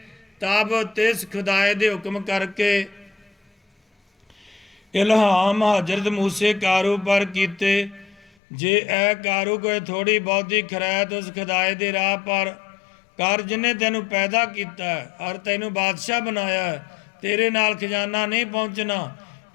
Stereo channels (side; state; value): right; drops out; at 8.3 s